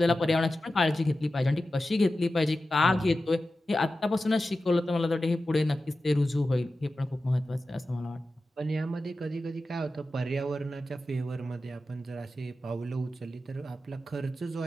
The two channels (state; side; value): normal; both; correlation 0.93